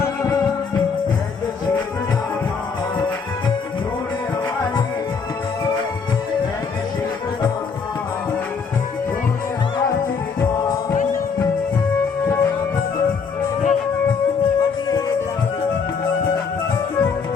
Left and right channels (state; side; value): quieter; right; 5.5 dB